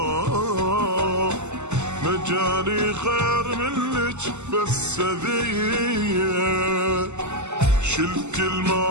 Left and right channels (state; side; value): late; left; 0.83 ms